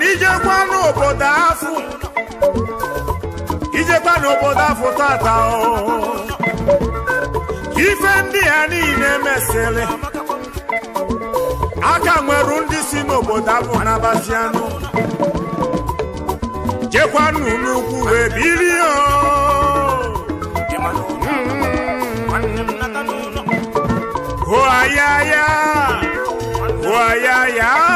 ijekwa n'obodo afọ tata ife ndị ya niile mesịrị aka nwere ndị si n'obodo abụ n'Abazianụ jekwanụ n'ugwu wee bilie hoayaya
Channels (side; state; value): both; identical; correlation 1.00